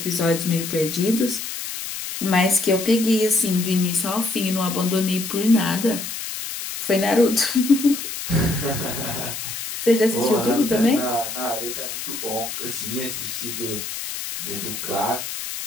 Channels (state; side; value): noise; left; hiss, 6 dB below the sound